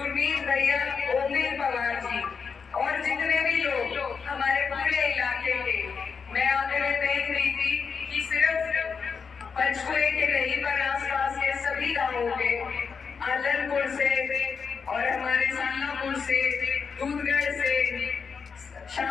भैया, ओमवीर पवार जी, और जितने भी लोग हमारे पूरे इलाके के। मैं आगे में देख रही थी कि सिर्फ पंचकुले के नहीं पर आसपास के सभी गांवों के, आलनपुर से और हमारे सालापुर से, दूधगढ़ से,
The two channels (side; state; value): right; quieter; 5.7 dB